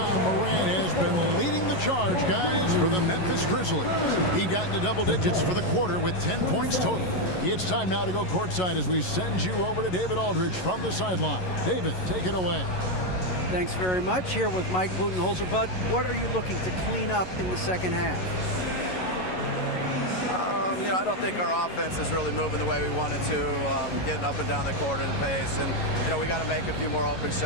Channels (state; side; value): late; right; 11 ms